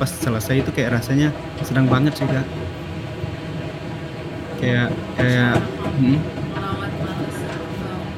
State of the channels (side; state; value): both; identical; correlation 1.00